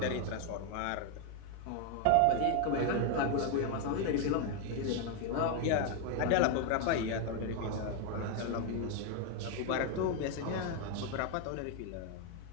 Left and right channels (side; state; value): both; different; correlation 0.01